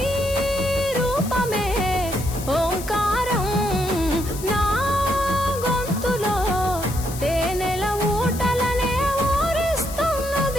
రూపమే ఓంకారం నా గొంతులో తేనెల ఊటలనే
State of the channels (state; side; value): noise; left; hiss, 12 dB below the sound